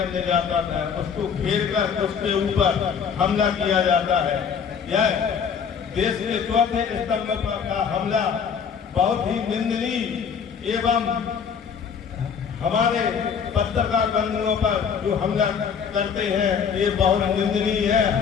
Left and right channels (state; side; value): quieter; right; 6.8 dB